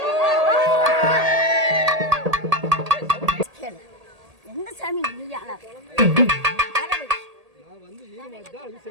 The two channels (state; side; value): late; left; 1.8 ms